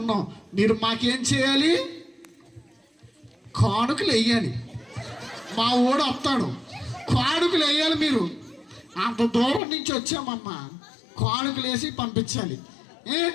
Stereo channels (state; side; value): drops out; right; at 9.6 s